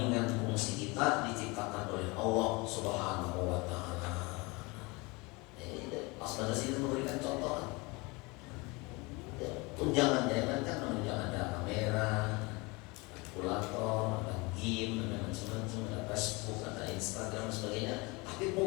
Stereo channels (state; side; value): quieter; right; 26.0 dB